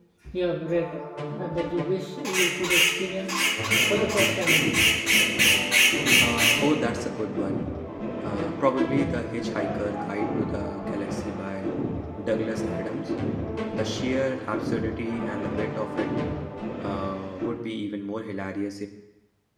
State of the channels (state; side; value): identical; both; correlation 1.00